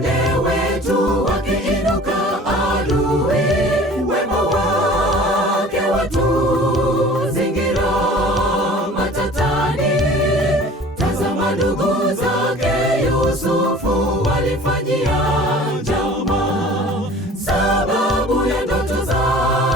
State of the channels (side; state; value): both; normal; correlation 0.45